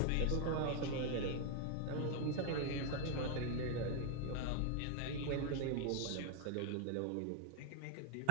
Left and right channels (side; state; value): both; different; correlation 0.01